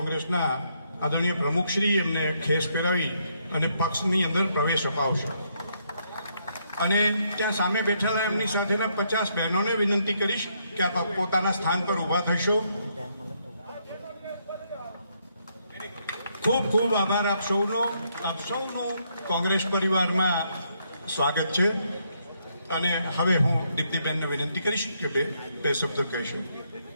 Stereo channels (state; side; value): inverted; both; correlation -0.75